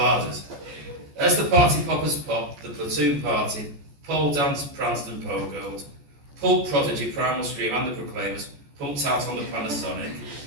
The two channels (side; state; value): left; late; 14 ms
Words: As the party poppers popped, the platoon partied, pole danced, pranced and pogoed. Pulp Prodigy, Primal Scream and the Proclaimers pumped out on the Panasonic.